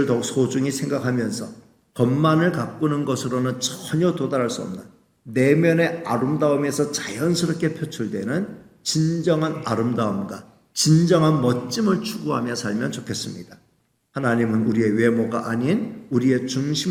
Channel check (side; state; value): both; identical; correlation 1.00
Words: 더욱 소중히 생각하면서 겉만을 가꾸는 것으로는 전혀 도달할 수 없는 내면의 아름다움에서 자연스럽게 표출되는 진정한 아름다움과 진정한 멋짐을 추구하며 살면 좋겠습니다. 하나님은 우리의 외모가 아닌 우리의